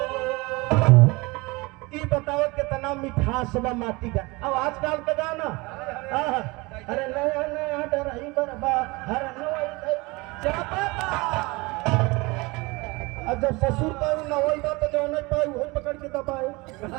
कितना मिठास बा माटी का। अब आजकल का गाना अरे नया नया डरही बरबा हर अब जब ससुर का नवई बा तो जो नहीं पाई वही पकड़ के दबाए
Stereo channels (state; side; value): quieter; left; 24.5 dB